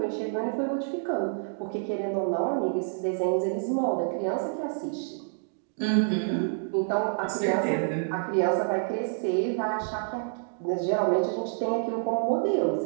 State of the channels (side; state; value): left; silent; digital silence